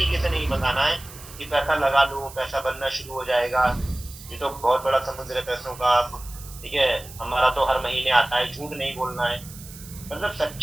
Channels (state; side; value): noise; right; hiss, 17 dB below the sound